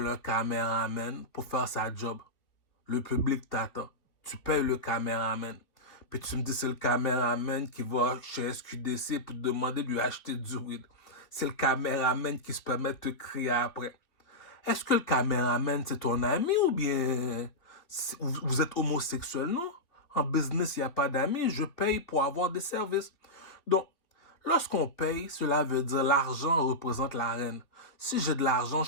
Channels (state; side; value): late; right; 3.0 ms